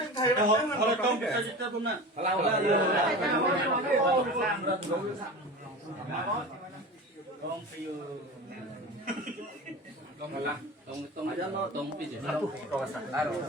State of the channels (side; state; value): both; normal; correlation 0.31